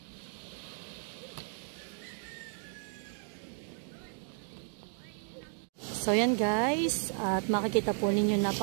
So yan guys, at makikita po ninyo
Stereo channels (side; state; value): left; silent; 55 dB below the other